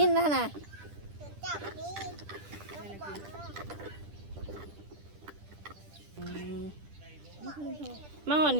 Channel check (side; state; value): left; late; 10 ms